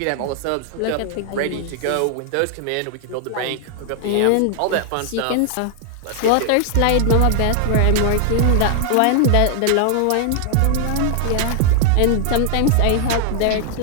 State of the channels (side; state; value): both; different; correlation 0.00